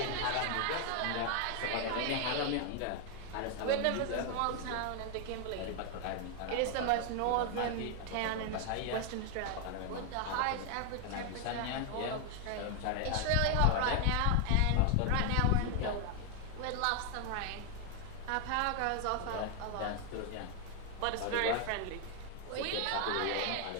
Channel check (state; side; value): different; both; correlation 0.01